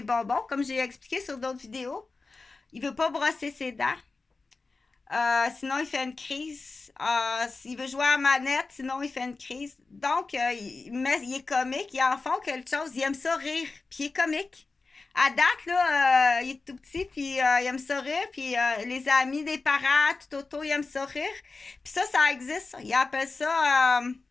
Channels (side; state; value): right; quieter; 3.9 dB